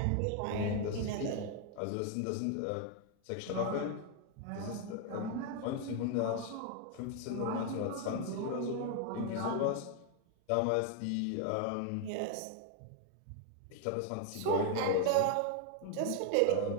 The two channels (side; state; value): both; different; correlation 0.00